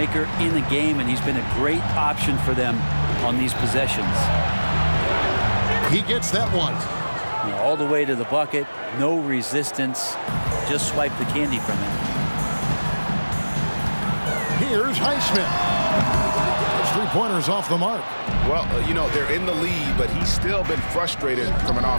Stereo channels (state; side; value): inverted; both; correlation -1.00